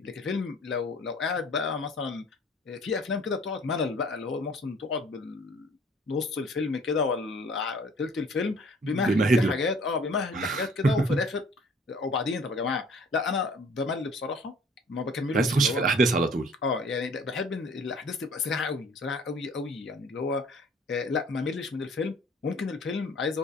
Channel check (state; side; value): normal; both; correlation 0.53